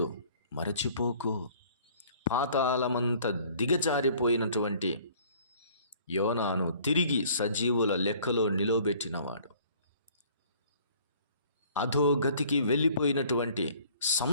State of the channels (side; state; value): both; inverted; correlation -0.55